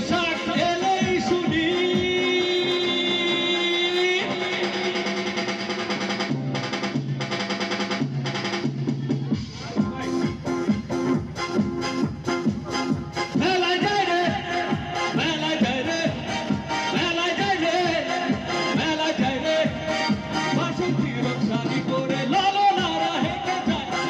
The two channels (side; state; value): both; identical; correlation 1.00